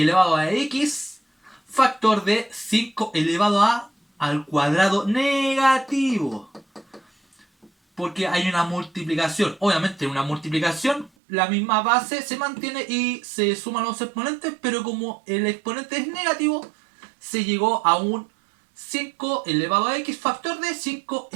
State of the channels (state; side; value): drops out; left; at 11.1 s